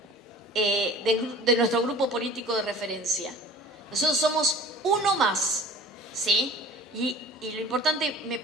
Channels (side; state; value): both; normal; correlation 0.44